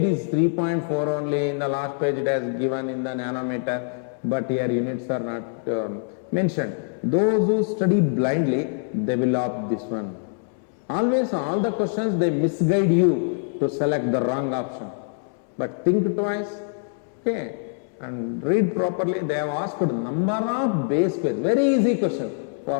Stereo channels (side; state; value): right; silent; 62 dB below the other